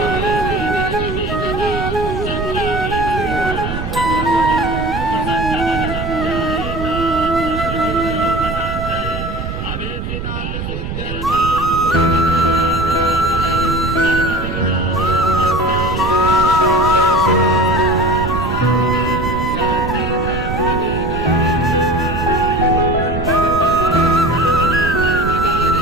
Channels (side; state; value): right; noise; rumble, 5 dB below the sound